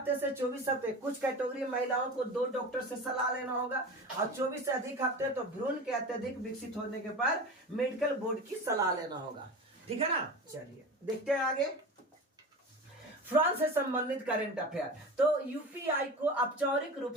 से 24 हफ्ते कुछ कैटेगरी महिलाओं को 2 डॉक्टर से सलाह लेना होगा, और 24 से अधिक हफ्ते तो भ्रूण के अत्यधिक विकसित होने के बाद मेडिकल बोर्ड की सलाह लेना होगा। ठीक है ना। चलिए देखते हैं आगे, फ्रांस से संबंधित करंट अफेयर। तो यूपीआई को औपचारिक रूप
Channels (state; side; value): normal; both; correlation 0.31